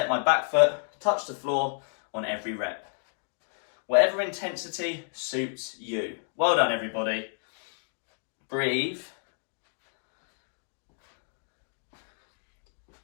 my back foot touch the floor on every rep. Whatever intensity suits you. Well done, everybody. Breathe.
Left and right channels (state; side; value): silent; right; digital silence